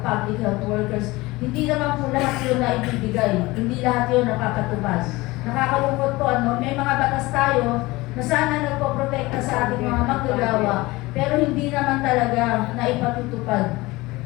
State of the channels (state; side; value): quieter; right; 21.1 dB